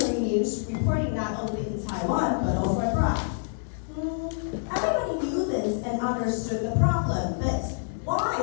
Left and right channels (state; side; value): silent; right; digital silence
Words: news reporting not only in Taiwan, but also abroad. Everybody knew this and understood the problem, but why?